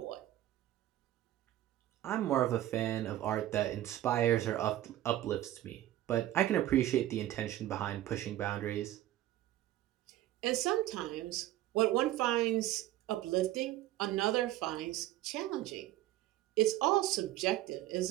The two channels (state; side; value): quieter; left; 14.2 dB